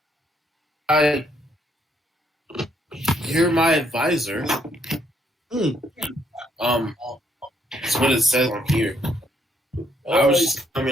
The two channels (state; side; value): normal; both; correlation 0.71